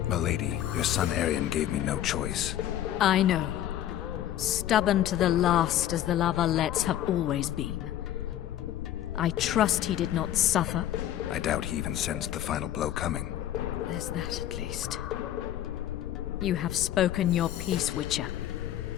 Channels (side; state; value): right; quieter; 11.9 dB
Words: Milady, your son Arion gave me no choice. I know. Stubborn to the last as the La Valettes have always been. I trust he did not suffer. I doubt he even sensed the final blow coming. There's that at least. You have spoken your piece, Witcher.